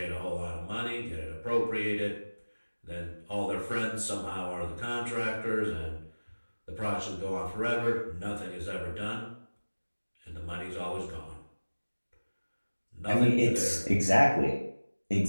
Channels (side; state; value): both; inverted; correlation -1.00